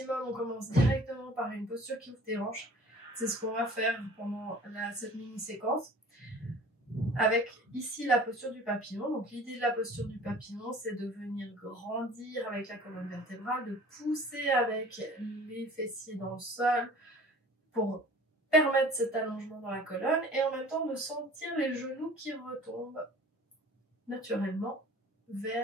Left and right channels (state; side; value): normal; both; correlation 0.46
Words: on commence directement par une posture qui ouvre tes hanches. C'est ce qu'on va faire pendant cette mini-séquence. Avec ici la posture du papillon. Donc l'idée de la posture du papillon, c'est de venir grandir avec la colonne vertébrale, de pousser avec les fessiers dans le sol pour permettre cet allongement dans la colonne et en même temps de sentir les genoux qui retombent naturellement